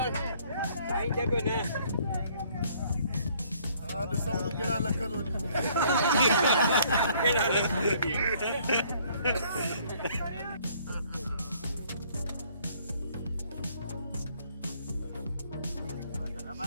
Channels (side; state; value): both; inverted; correlation -0.61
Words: केड़ा लख दो